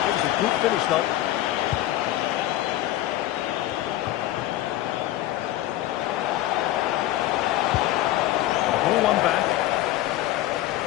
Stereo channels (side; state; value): right; quieter; 14.7 dB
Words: Good finish, though. Ball one back.